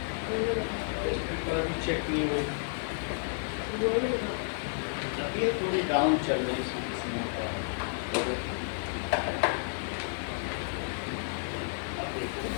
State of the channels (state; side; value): silent; right; digital silence